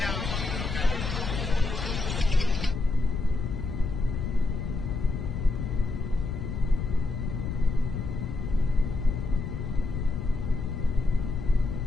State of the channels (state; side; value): noise; left; rumble, 3 dB below the sound